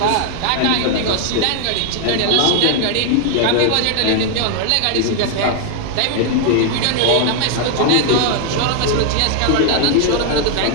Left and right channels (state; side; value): different; both; correlation 0.00